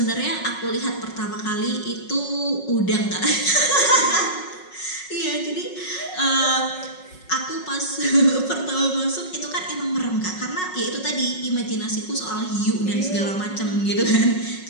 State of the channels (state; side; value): late; right; 5.4 ms